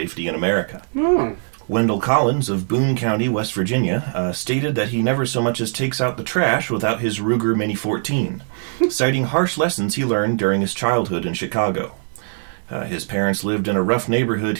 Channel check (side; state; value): left; silent; 65 dB below the other